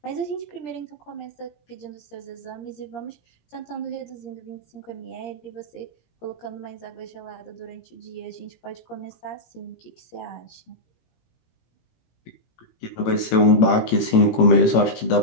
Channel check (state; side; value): late; right; 18 ms